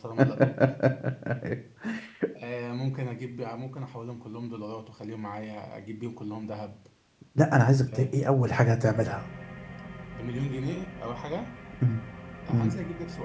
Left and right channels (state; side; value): identical; both; correlation 1.00